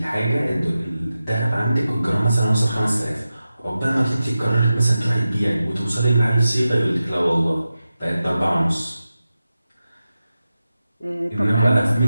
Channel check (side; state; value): both; inverted; correlation -0.93